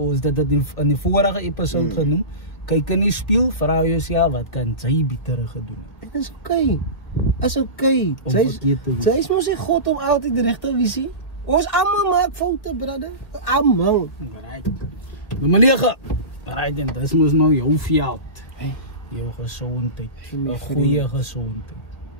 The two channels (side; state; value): right; late; 1.9 ms